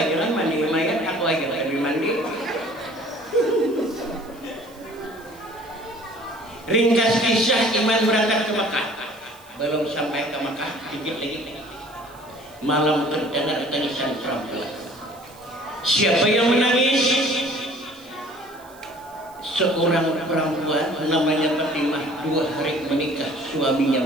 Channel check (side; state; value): right; noise; hiss, 26 dB below the sound